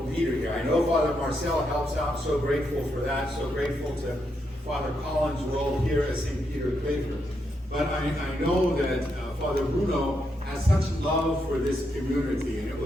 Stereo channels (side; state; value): both; normal; correlation 0.81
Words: leader here. I know Father Marcel helps out. So grateful for that. So grateful to Father Collins' role here at St. Peter Claver. But I know that Father Bruno has such love for this community, and it